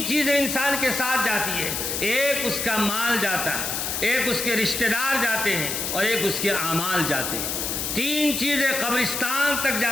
چیزیں انسان کے ساتھ جاتی ہے۔ ایک اس کا مال جاتا ہے، ایک اس کے رشتہ دار جاتے ہیں، اور ایک اس کے اعمال جاتے ہیں۔ 3 چیزیں قبرستان تک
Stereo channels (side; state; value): left; noise; hiss, 2 dB below the sound